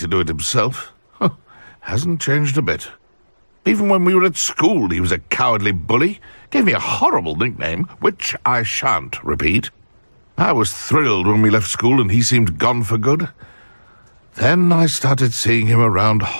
do it himself. Hasn't changed a bit. Even when we were at school, he was a cowardly bully. Gave me a horrible nickname, which I shan't repeat. I was thrilled when we left school and he seemed gone for good. Then I started seeing him around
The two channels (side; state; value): both; inverted; correlation -1.00